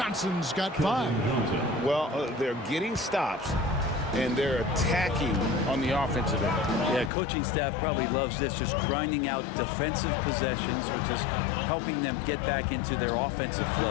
got 5. Well, they're getting stops, and they're attacking on the offensive end. Yeah, coaching staff probably loves this, just grinding out defensive possessions, which is helping them get back into their offensive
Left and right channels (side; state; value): right; drops out; at 7.1 s